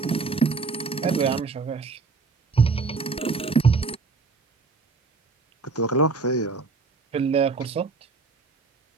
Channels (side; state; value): left; quieter; 4.3 dB